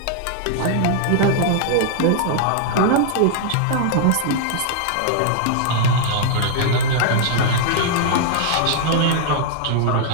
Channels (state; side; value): different; both; correlation 0.00